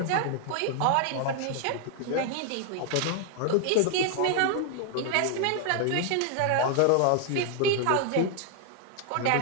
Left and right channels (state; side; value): different; both; correlation 0.00